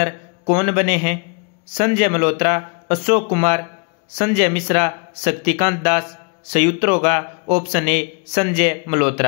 कौन बने हैं? संजय मल्होत्रा, अशोक कुमार, संजय मिश्रा, शक्तिकांत दास। सही उत्तर होगा ऑप्शन ए संजय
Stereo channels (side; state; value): right; quieter; 33.7 dB